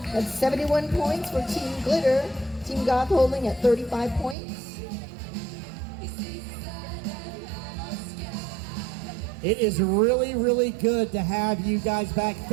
That's 71 points for Team Glitter. Team Goth holding at 35 points. It is really, really good to have you guys back.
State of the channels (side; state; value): left; drops out; at 4.4 s